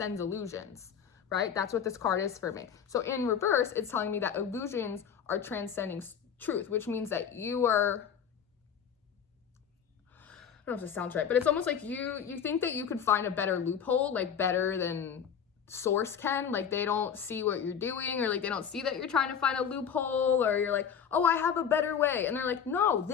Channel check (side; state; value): right; quieter; 7.7 dB